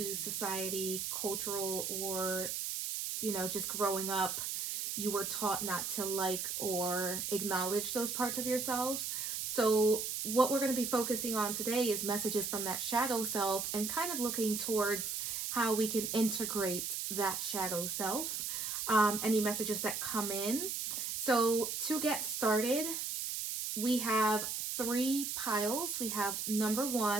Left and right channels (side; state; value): right; noise; hiss, 2 dB below the sound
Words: society, cultural, or just growing up, you were taught not to like or acknowledge those parts of yourselves. So what we're going to be focusing on today is messages from that shadow self and kind of looking towards how we can integrate that shadow self, any messages that come in. So to get started, we have three piles. We have number